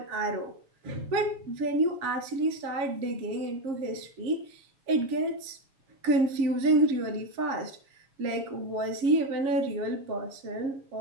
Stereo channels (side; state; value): left; late; 7.3 ms